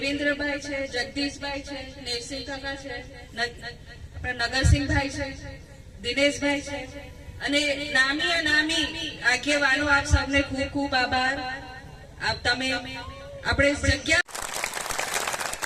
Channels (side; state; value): both; identical; correlation 1.00